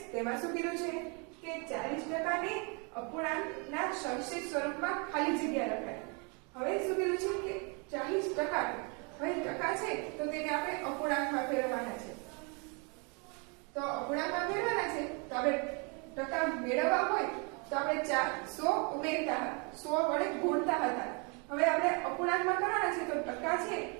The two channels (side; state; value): left; quieter; 33.6 dB